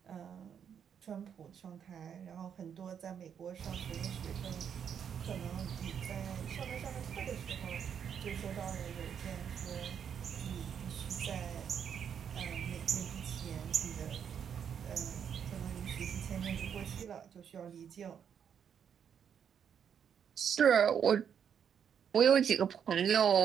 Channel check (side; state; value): left; quieter; 8.0 dB